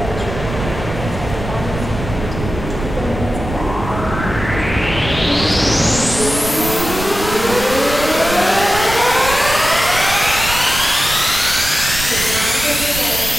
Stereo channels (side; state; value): right; noise; rumble, 8 dB below the sound